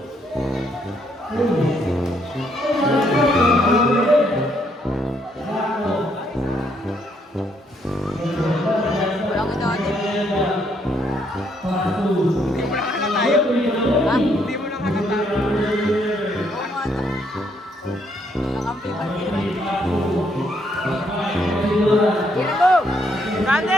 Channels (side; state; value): both; normal; correlation 0.72